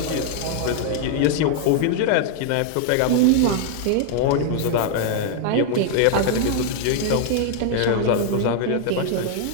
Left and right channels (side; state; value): both; different; correlation 0.00